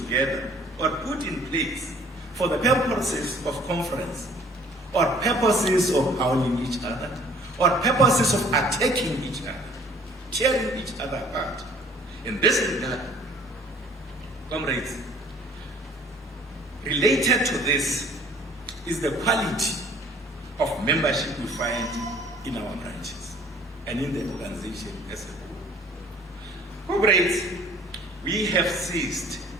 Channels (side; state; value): both; normal; correlation 0.54